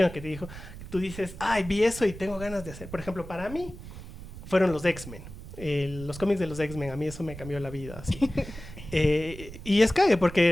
que te dijo, tú dices, ay, vi eso y tengo ganas de hacer. Por ejemplo, para mí fueron los X-Men. Los cómics de los X-Men, a mí eso me cambió la vida, así. Y es cague,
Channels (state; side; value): noise; right; rumble, 13 dB below the sound